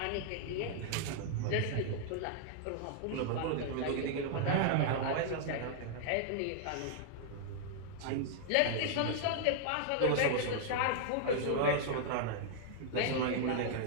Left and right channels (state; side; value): different; both; correlation -0.01